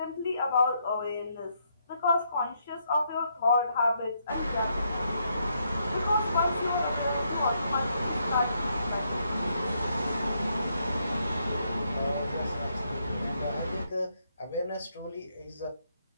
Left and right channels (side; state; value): both; inverted; correlation -0.76